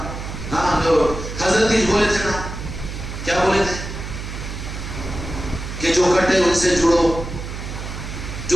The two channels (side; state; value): right; noise; hum, 8 dB below the sound